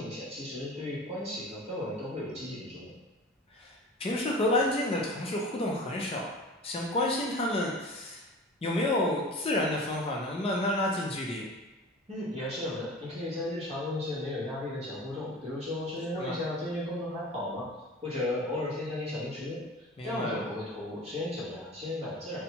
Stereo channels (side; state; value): both; normal; correlation 0.37